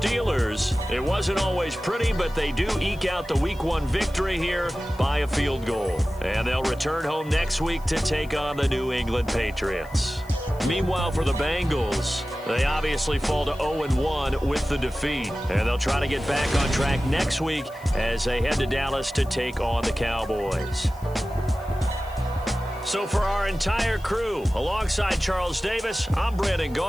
it wasn't always pretty, but they do eke out the Week 1 victory here by a field goal. And they'll return home next week to take on the New England Patriots. Meanwhile, for the Bengals, they obviously fall to 0-1 with the defeat. And they'll try to get back on track next week as they head to Dallas to take on the Cowboys. So for our entire crew, alongside Charles Davis, I'm Brandon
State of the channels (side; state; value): left; noise; hiss, 25 dB below the sound